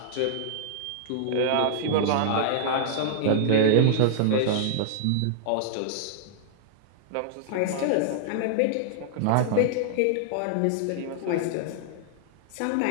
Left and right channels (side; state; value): both; different; correlation -0.01